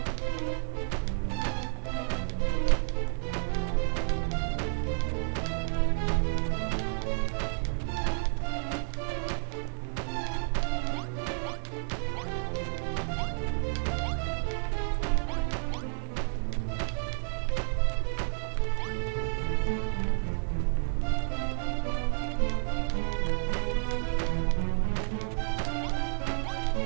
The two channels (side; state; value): left; silent; digital silence